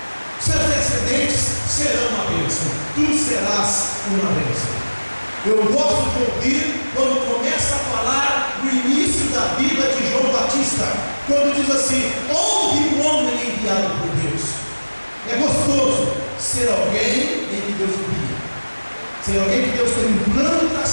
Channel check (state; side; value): inverted; both; correlation -1.00